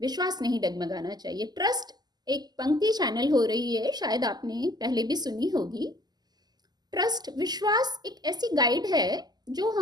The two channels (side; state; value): left; late; 0.20 ms